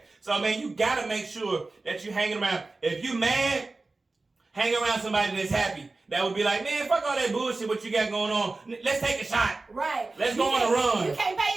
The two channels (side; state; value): left; quieter; 3.4 dB